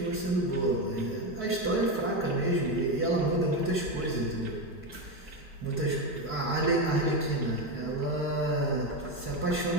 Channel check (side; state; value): both; normal; correlation 0.13